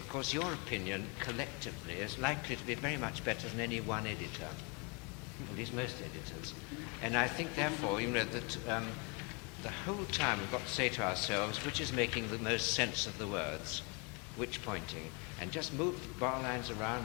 your opinion collectively is likely to be very much better than any one editor, at least most editors. And I think, therefore, that the whole time we've got to say to ourselves, which is making the most sense of the words, which pointing, and just move the bar lines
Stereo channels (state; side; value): quieter; right; 31.9 dB